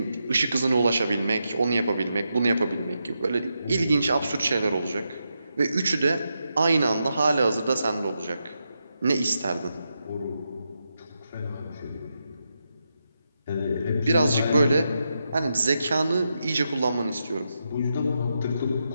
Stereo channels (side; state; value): both; inverted; correlation -0.86